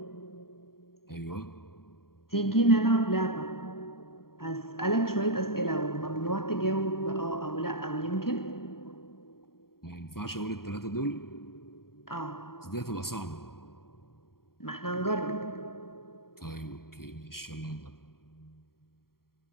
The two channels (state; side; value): late; right; 0.93 ms